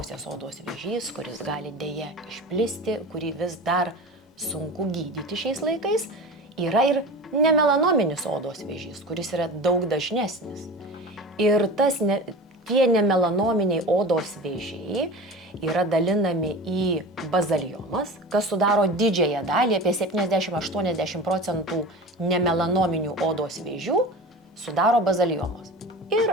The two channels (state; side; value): normal; both; correlation 0.32